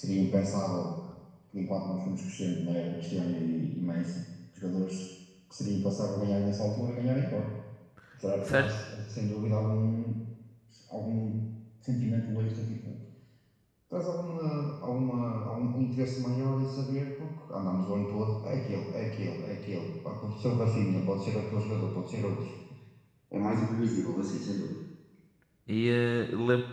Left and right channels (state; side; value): identical; both; correlation 1.00